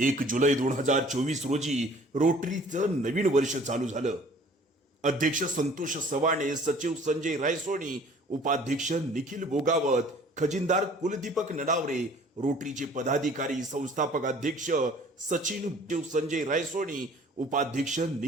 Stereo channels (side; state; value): both; normal; correlation 0.52